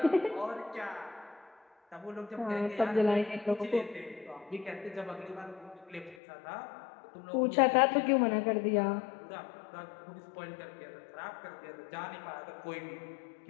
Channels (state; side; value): drops out; right; at 6.2 s